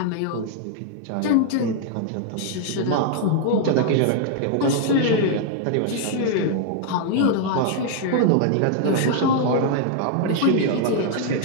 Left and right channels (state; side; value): different; both; correlation 0.00